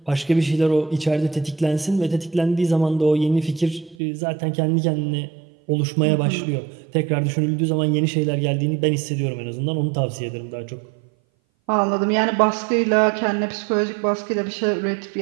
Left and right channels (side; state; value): left; drops out; at 4.0 s